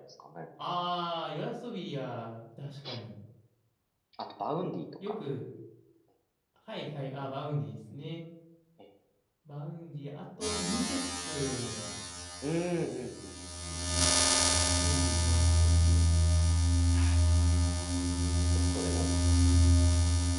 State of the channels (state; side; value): identical; both; correlation 1.00